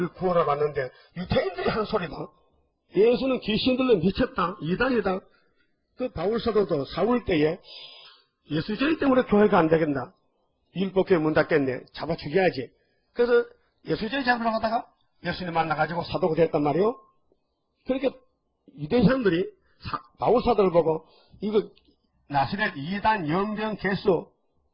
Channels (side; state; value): both; identical; correlation 1.00